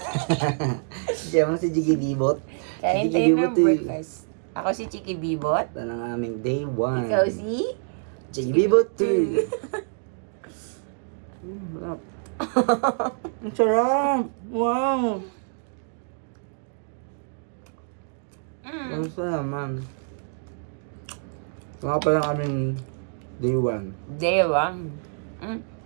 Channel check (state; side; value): silent; left; digital silence